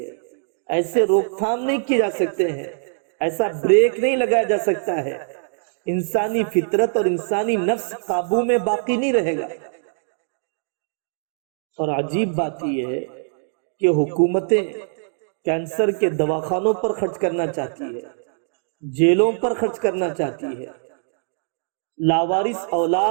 ایسے روک تھام نہیں کی جا سکتے ہیں، ایسا بریک نہیں لگایا جا سکتا ہے۔ انسانی فطرت اور انسانی نفس قابو میں باقی نہیں رہے گا۔ اور عجیب بات یہ ہے کہ حکومتیں کینسر کے دواخانوں پر خرچ کرنا چاہتی ہے، جیلوں پر خرچ کرنا چاہتی ہے، لاوارث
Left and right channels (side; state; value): left; silent; digital silence